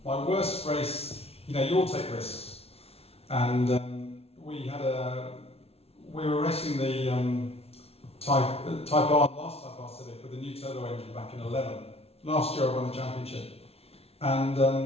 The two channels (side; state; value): right; late; 0.29 ms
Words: my worst race. You know, you all take risks, and we were racing the Type R, last Type R Civic with a new turbo engine back in 11. Last year I won the championship, and